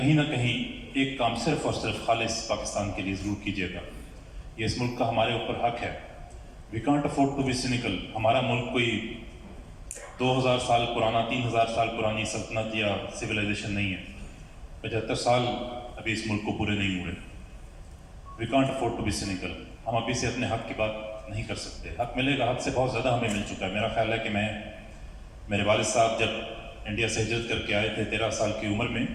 نہ کہیں ایک کام صرف اور صرف خالص پاکستان کے لیے ضرور کیجیے گا۔ یہ اس ملک کا ہمارے اوپر حق ہے۔ We can't afford to be cynical. ہمارا ملک کوئی 2000 سال پرانا، 3000 سال پرانی سلطنت یا سویلائزیشن نہیں ہے۔ 75 سال ابھی اس ملک کو پورے نہیں ہوئے۔ We can't afford to be cynical. ہم ابھی سے اپنے حق کی بات نہیں کر سکتے۔ حق ملے گا، حق سے بہت زیادہ ہمیں مل چکا ہے۔ میرا خیال ہے کہ میرے والد صاحب جب انڈیا سے ہجرت کر کے آئے تھے 13 سال کی عمر میں،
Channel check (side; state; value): both; identical; correlation 1.00